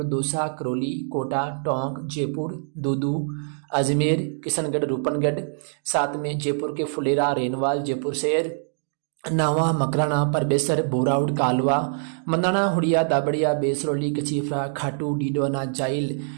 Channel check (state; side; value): silent; left; digital silence